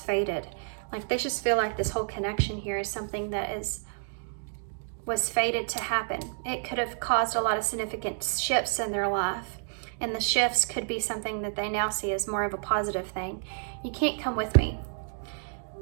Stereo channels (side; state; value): left; silent; digital silence